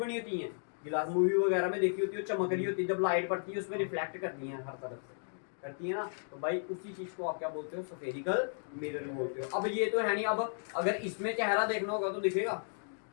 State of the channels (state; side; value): silent; right; digital silence